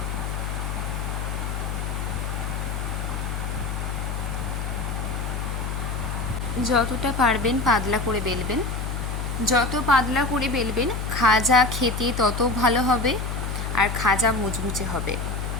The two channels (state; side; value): noise; left; hum, 3 dB below the sound